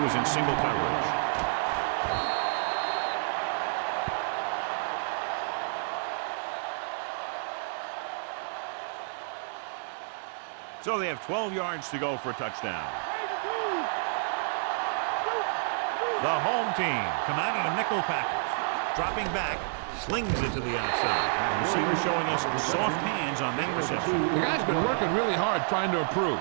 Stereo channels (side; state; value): left; silent; digital silence